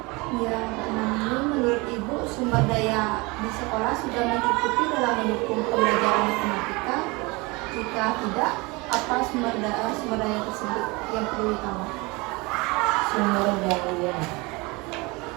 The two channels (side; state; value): left; quieter; 25.3 dB